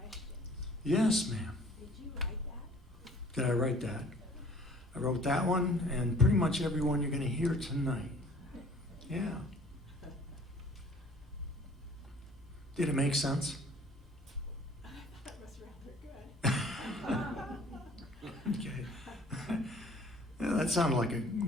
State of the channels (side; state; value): both; normal; correlation 0.52